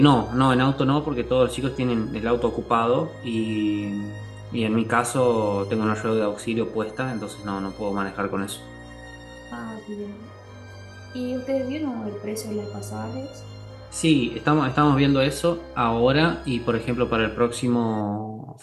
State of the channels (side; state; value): both; identical; correlation 1.00